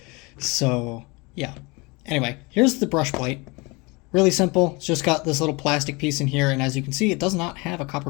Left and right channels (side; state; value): right; quieter; 26.4 dB